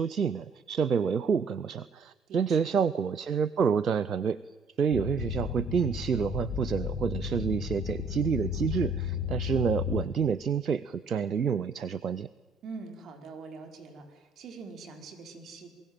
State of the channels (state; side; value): quieter; left; 4.4 dB